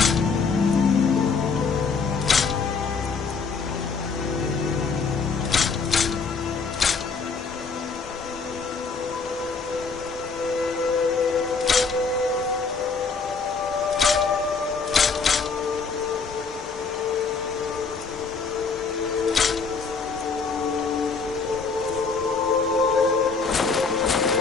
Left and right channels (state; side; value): quieter; right; 4.9 dB